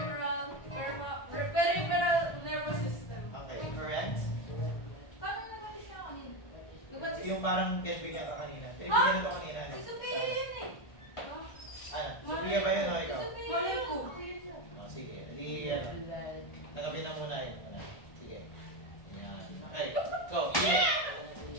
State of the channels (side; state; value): right; late; 1.2 ms